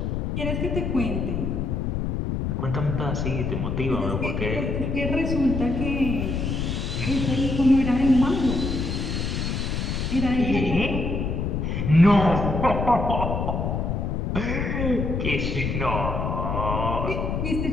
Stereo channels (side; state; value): left; noise; rumble, 1 dB below the sound